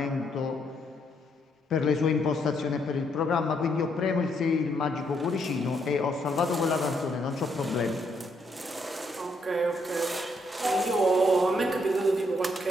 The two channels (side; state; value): both; normal; correlation 0.74